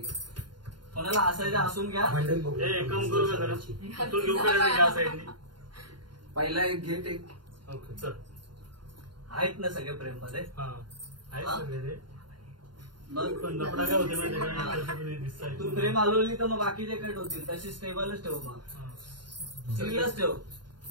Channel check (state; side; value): late; left; 0.71 ms